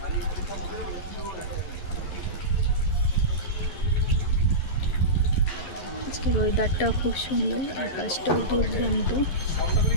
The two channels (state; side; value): late; right; 11 ms